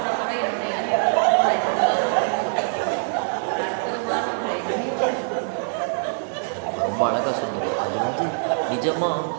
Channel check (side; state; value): left; silent; 63 dB below the other